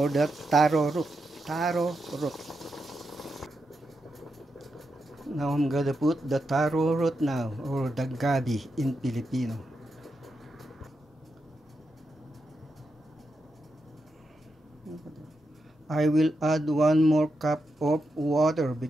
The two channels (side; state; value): both; normal; correlation 0.85